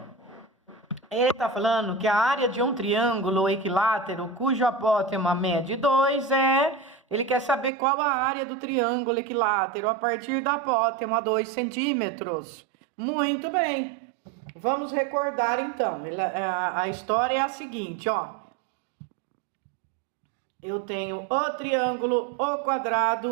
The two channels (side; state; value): left; drops out; at 7.7 s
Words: Ele está falando que a área de um triângulo equilátero cujo apótema mede 2 Ele quer saber qual a área do triângulo equilátero a partir da apótema 2 centímetros. Muito bem. Vamos recordar então. A história é a seguinte, ó. Eu tenho o triângulo, o